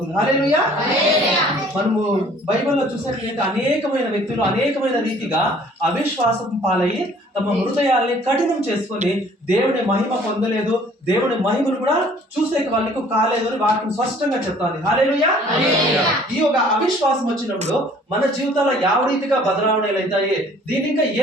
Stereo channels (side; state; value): both; normal; correlation 0.55